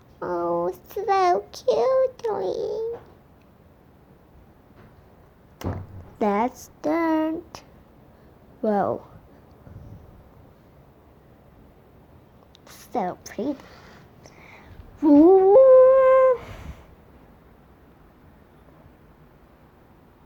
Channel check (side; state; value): both; identical; correlation 1.00